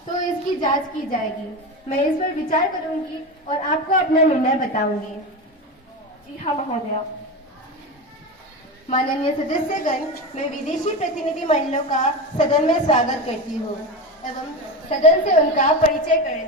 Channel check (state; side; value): normal; both; correlation 0.21